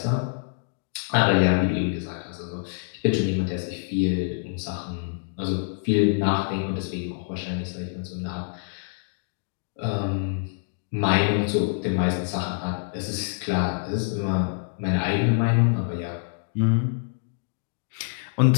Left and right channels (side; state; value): right; silent; digital silence